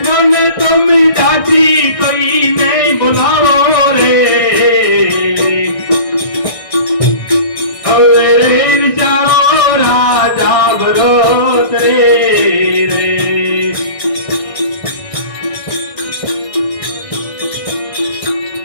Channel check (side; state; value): right; late; 1.6 ms